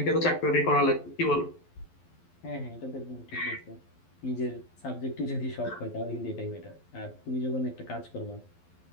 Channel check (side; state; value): right; late; 12 ms